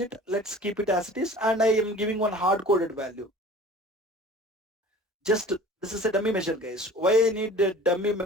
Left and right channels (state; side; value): normal; both; correlation 0.43